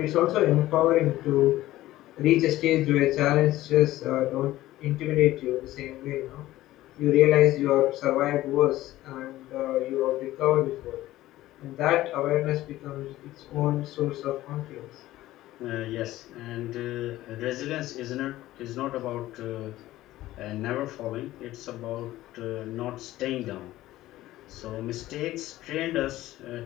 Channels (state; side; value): quieter; right; 15.7 dB